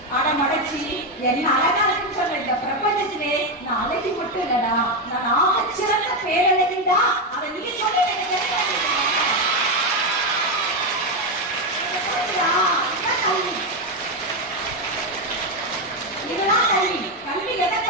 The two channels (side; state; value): both; normal; correlation 0.08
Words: அடமடைச்சி என்ன அழகா இருக்குன்னு சொல்ல. இந்த பிரபஞ்சத்திலே நான் அழகி மட்டும் இல்லடா, நான் ஆகச்சிறந்த பேரழகிடா. அதை நீ சொல்லி இதுதான் கல்வி. கல்வி எதை